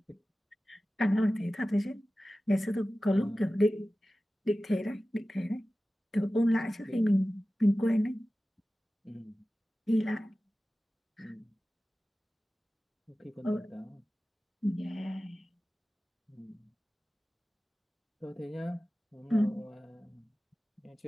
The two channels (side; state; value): both; normal; correlation 0.96